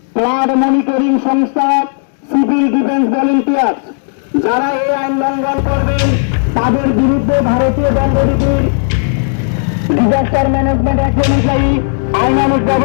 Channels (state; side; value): silent; right; digital silence